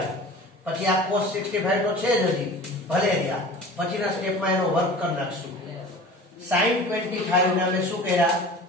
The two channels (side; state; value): both; normal; correlation 0.40